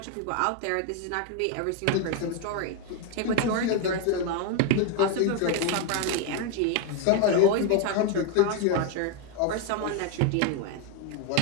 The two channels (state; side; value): different; both; correlation 0.01